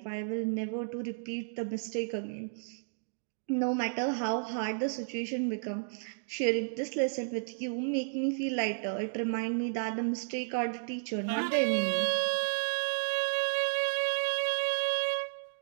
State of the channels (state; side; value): silent; left; digital silence